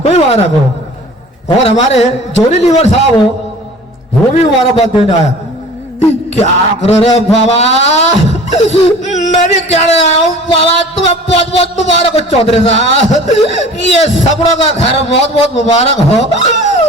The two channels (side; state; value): both; normal; correlation 0.44